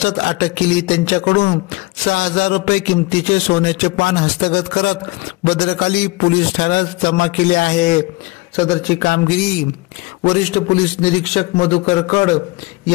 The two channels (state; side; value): quieter; right; 21.9 dB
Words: अटक केली। त्यांच्याकडून 6000 रुपये किमतीचे सोन्याचे पान हस्तगत करत भद्रकाली पोलीस ठाण्यात जमा केले आहे। सदरची कामगिरी वरिष्ठ पोलीस निरीक्षक मधुकर कड